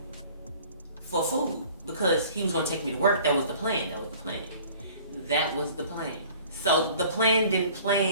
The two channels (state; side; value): inverted; both; correlation -0.50